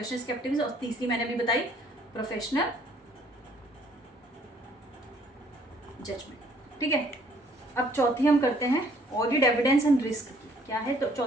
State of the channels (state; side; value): normal; both; correlation 0.62